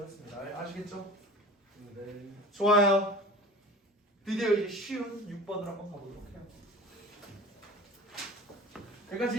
했습니다. 아시겠죠? 네. 좋아요. 드디어 이제 쉬운 6번을 한번 가보도록 해요.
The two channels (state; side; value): normal; both; correlation 0.39